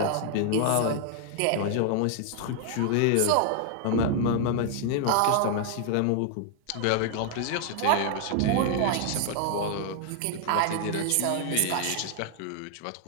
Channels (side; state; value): both; different; correlation 0.00